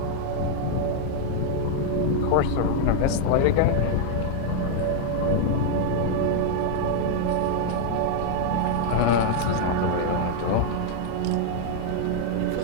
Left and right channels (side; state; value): both; different; correlation 0.00